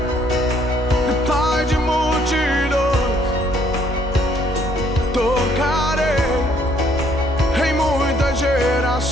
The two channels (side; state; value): both; normal; correlation 0.66